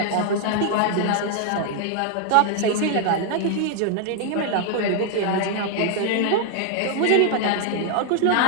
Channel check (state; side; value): different; both; correlation 0.00